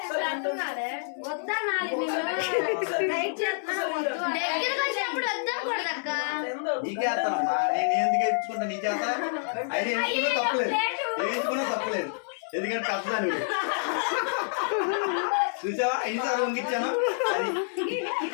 దగ్గరకు వచ్చినప్పుడు వద్దకూడదు అక్క. నీకేస్తానమ్మా, నేను ఎందుకు ఎత్తుకుంటా నీ చేత? అయితే ఎంచుకున్నా తప్పలేదు, ఎంచుకున్నా తప్పలేదు. ఎందుకంటే తప్పదాన్ని చూసావా ఎన్నిసార్లు వంగిచ్చాను.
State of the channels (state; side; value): silent; right; digital silence